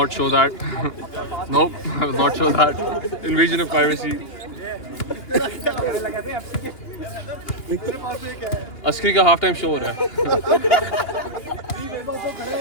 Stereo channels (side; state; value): right; late; 2.9 ms